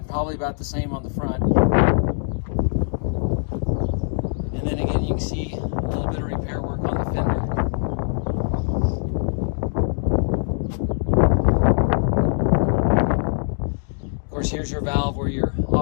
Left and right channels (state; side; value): silent; right; digital silence